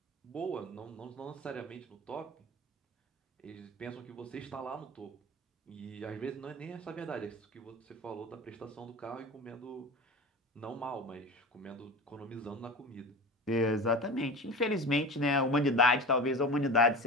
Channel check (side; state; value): both; normal; correlation 0.32